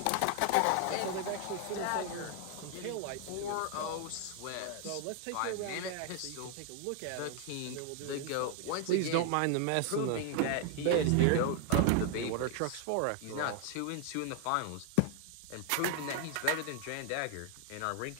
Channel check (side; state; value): both; different; correlation 0.00